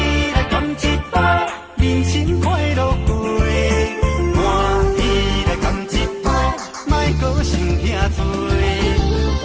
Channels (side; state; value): both; identical; correlation 1.00